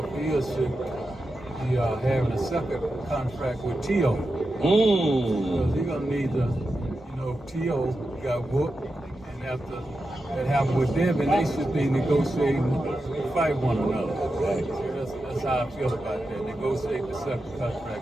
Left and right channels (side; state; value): both; normal; correlation 0.90